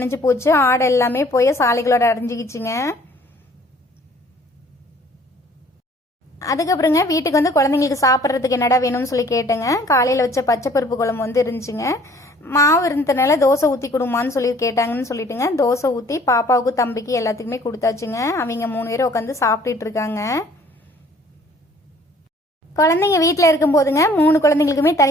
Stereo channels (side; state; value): both; normal; correlation 0.55